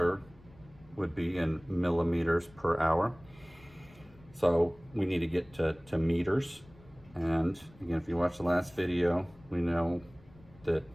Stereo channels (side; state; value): left; noise; rumble, 25 dB below the sound